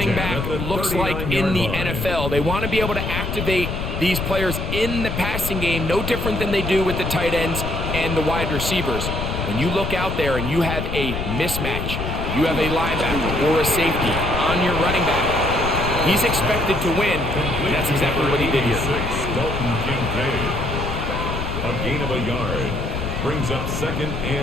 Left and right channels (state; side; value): noise; left; rumble, 3 dB below the sound